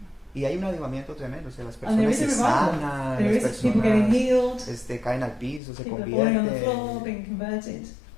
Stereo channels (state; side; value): drops out; right; at 5.6 s